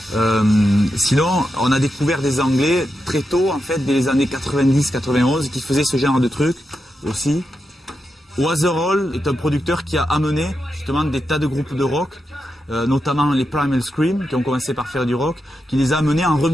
Sinon, on a découvert des Anglais très tôt, en fait, dès les années 90-91, qui faisaient ce genre de trucs aussi. Waterall est un producteur qui a amené justement des tas de groupes de rock, notamment les Primal Scream, qui ont commencé par faire du rock, qui les a amenés en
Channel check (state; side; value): normal; both; correlation 0.87